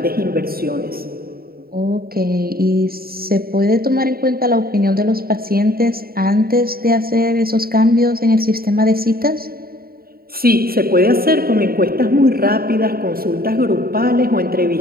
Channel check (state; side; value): late; left; 0.43 ms